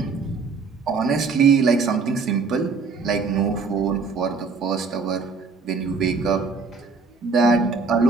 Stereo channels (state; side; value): quieter; left; 4.6 dB